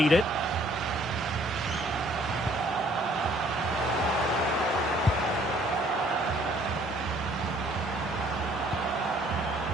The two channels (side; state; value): both; normal; correlation 0.60